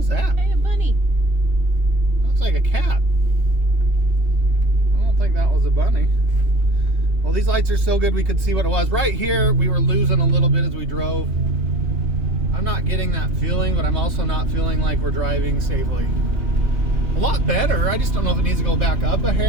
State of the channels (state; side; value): late; left; 2.9 ms